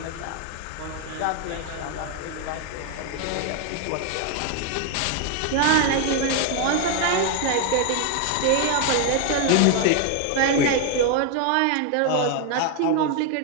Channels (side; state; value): both; different; correlation 0.01